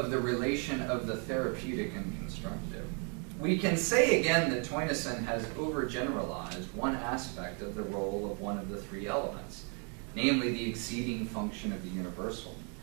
the relation of the therapeutic and constructive, we can say again that Theunissen has overgeneralized one aspect of the role of one of the three elements, namely the exceeding function of the universal.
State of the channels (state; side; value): quieter; left; 38.2 dB